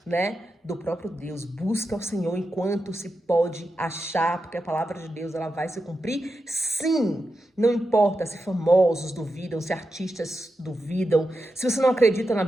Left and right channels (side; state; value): both; normal; correlation 0.89